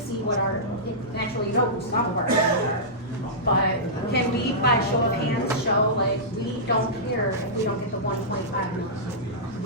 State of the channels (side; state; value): both; normal; correlation -0.16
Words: what our, naturally you know who some of our opinions are. But can we, by show of hands, show like, we don't care if we don't get the 1.5 million?